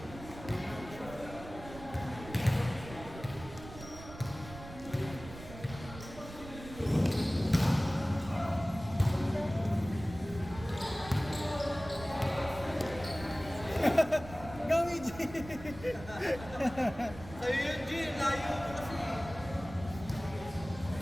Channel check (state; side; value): noise; right; rumble, 14 dB below the sound